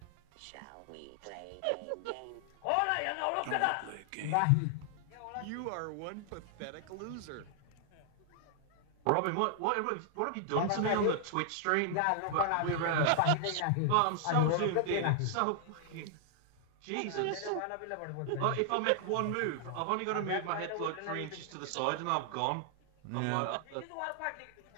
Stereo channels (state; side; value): different; both; correlation 0.00